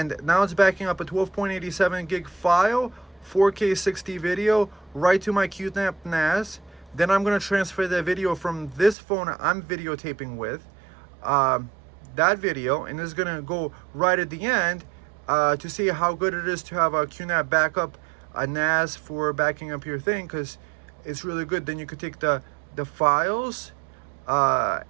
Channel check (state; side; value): drops out; left; at 9.0 s